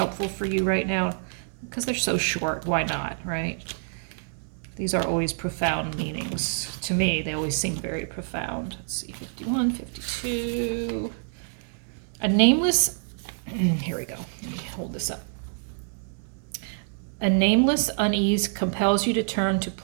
for you right now, because they're so short. Why not, right? These are always profound meanings. To me, they always seem very profound. Let's see, 51, 52. A nameless, here we go. Let me hold this up. A nameless unease compels you to turn to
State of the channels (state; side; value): silent; left; digital silence